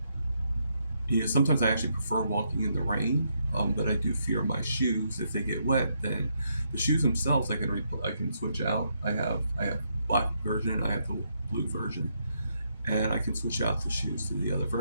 you know, sometimes I actually prefer walking in the rain, but I do fear my shoes. If they get wet, then the shoes themselves I can switch out. I have black version, I have the blue version, and I can switch out the shoes to the other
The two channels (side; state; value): both; inverted; correlation -0.77